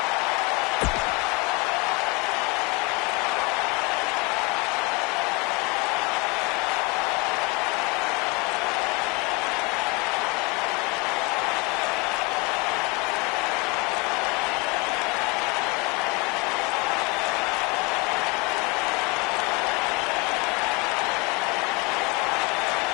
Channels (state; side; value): quieter; right; 27.8 dB